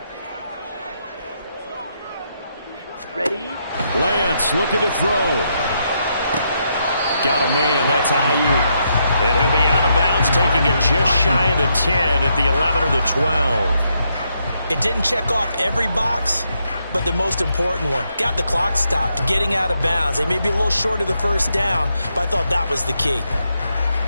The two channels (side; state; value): both; inverted; correlation -0.79